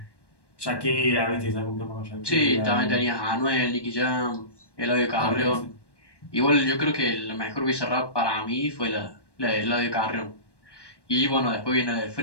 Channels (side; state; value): right; late; 1.1 ms